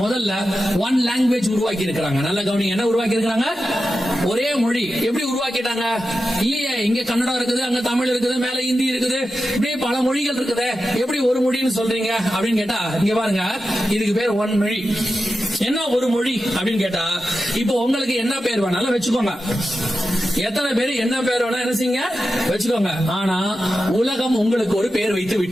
முதல்ல ஒன் லாங்குவேஜ் உருவாக்கி இருக்கிறாங்க. நல்ல கவனிங்க, என்ன உருவாக்கி இருக்கிறாங்க? ஒரே மொழி. எப்படி உருவாக்கிட்டாங்க? இல்லையே, இங்க கன்னடம் இருக்குது, அங்க தமிழ் இருக்குது, மேல ஹிந்தி இருக்குது, இப்படியே பல மொழிகள் இருக்குது. எப்படி ஒரு மொழின்னு சொல்றீங்க அப்படின்னு கேட்டா, இங்க பாருங்க, இதுக்கு பேர் ஒன் மொழி. என்ன ஒரு மொழி அப்படின்னு கேட்டா, இப்போ உங்களுக்கு என்ன பேர் வேணாலும் வச்சுக்கோங்க. எத்தனை பேர் என்ன பேர் வேணா என்ன செய்யுங்க வச்சுக்கோங்க. ஆனா உலகம் உங்களுக்கு ஒரு பேர் வைத்து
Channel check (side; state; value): both; normal; correlation 0.91